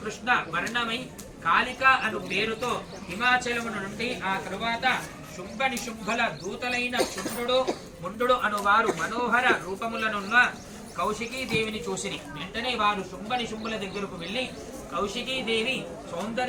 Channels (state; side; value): identical; both; correlation 1.00